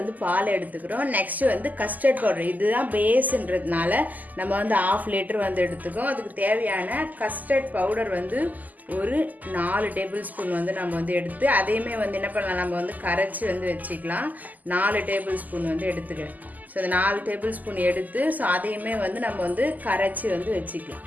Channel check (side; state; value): left; late; 0.081 ms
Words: பால் எடுத்துக்கிறோம். நெக்ஸ்ட் வந்து கஸ்டர்ட் பவுடர், இதுதான் பேஸ்ன்றதுனால நம்ம வந்து 1/2 லிட்டர் வந்து எடுத்துக்கோம். அதுக்கு தேவையான கஸ்டர்ட் பவுடர் வந்து ஒரு 4 டேபிள் ஸ்பூன் வந்து நம்ம வந்து எடுத்து அதையுமே வந்து என்ன பண்ணலாம், நம்ம வந்து கரைச்சி வந்து வச்சுக்கலாம். 4 டேபிள் ஸ்பூன் வந்து எடுத்துக்கிறேன். ஸோ இந்த 4 டேபிள் ஸ்பூன் எடுத்து ஸோ அதையுமே வந்து நம்ம வந்து கரைச்சி வந்து வச்சுக்கலாம்.